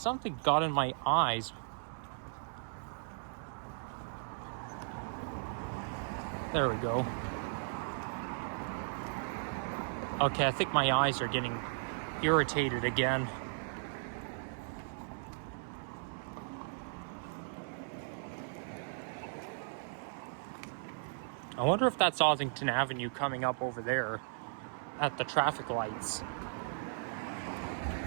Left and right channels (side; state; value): left; silent; 53 dB below the other